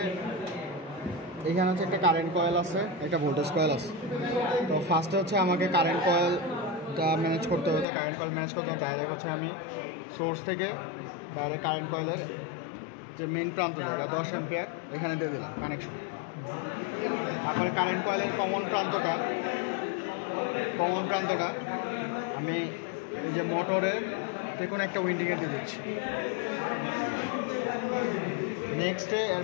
এখানে হচ্ছে একটা কারেন্ট কয়েল আছে, একটা ভোল্টেজ কয়েল আছে। তো ফার্স্টে হচ্ছে আমাকে কারেন্ট কয়েলটা ম্যানেজ করতে হবে। তো কারেন্ট কয়েল ম্যানেজ করতে ডাইরেক্ট হচ্ছে আমি সোর্স থেকে ডাইরেক্ট কারেন্ট কয়েলের যে মেইন প্রান্ত জায়গা 10 অ্যাম্পিয়ার এখানে দিয়ে দিলাম কানেকশন। তারপরে কারেন্ট কয়েলের কমন প্রান্তটা আমি এই যে মোটরের যে কোনো একটা উইন্ডিংয়ে দিয়ে দিচ্ছি। নেক্সটে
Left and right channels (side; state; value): right; drops out; at 7.9 s